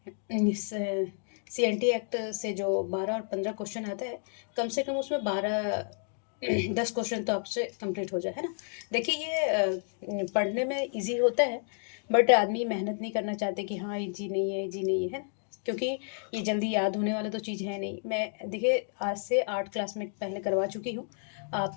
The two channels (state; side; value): silent; right; 55 dB below the other